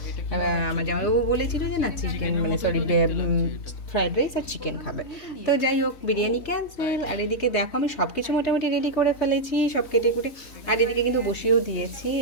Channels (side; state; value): right; late; 3.6 ms